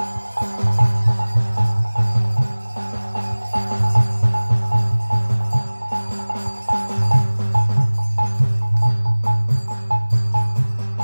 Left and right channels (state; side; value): inverted; both; correlation -1.00